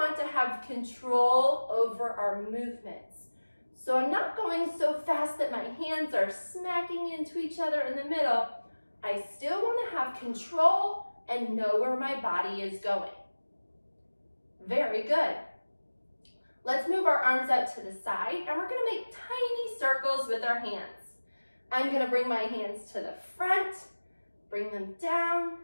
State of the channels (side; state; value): both; inverted; correlation -1.00